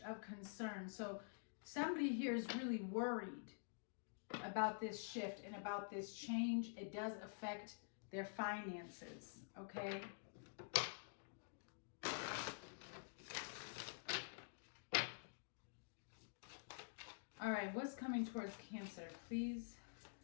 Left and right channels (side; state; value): right; silent; digital silence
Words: of concern. So somebody here is really worried about this shift and about this change. It does affect their finances, okay? All right, what's coming towards Cancer, please?